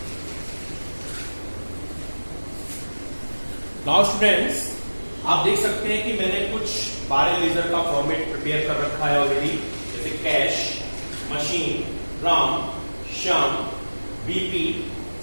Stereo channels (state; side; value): inverted; both; correlation -1.00